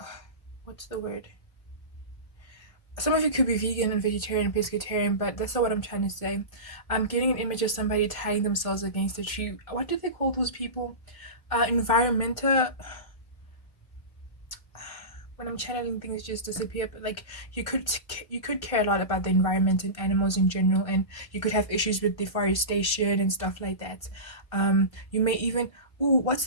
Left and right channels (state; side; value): late; right; 1.5 ms